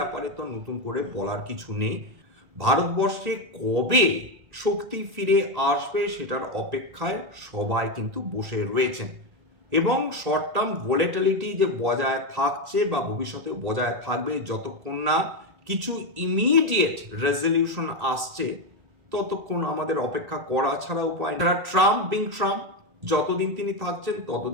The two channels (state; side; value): late; left; 1.8 ms